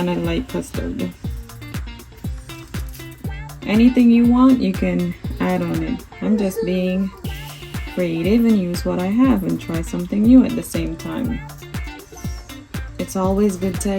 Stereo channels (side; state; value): both; identical; correlation 1.00